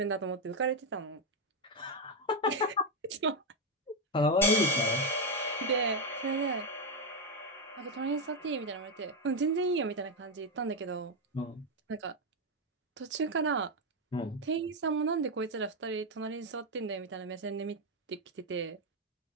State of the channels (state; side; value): normal; both; correlation 0.05